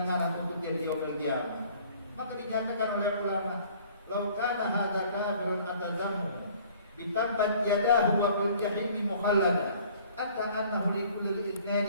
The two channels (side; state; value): both; inverted; correlation -0.54